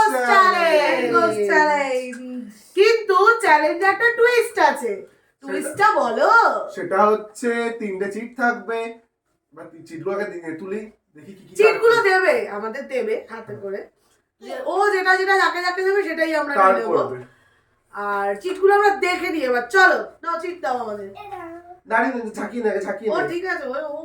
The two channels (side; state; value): both; identical; correlation 1.00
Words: চ্যালেঞ্জ, কিন্তু চ্যালেঞ্জে একটা টুইস্ট আছে। টুইস্টটা বলো। সেটা হচ্ছে 3টে চিট থাকবে। বা চিটগুলোকে তুলি, দেখি কি কি চিটগুলো দেবে, আমাদের দেবে হাতে করে। ও যেটা যেটা যাকে যাকে দেবে সেটাই আমরা নিয়ে নেব। আর চিটগুলো আমরা দেখে নিই। এবার চলো, নাও চিট দাও আমাদের। দাঁড়িয়ে ঝাঁকিয়ে নেবে, ঝাঁকিয়ে ও নেবে। ঠিক আছে, ও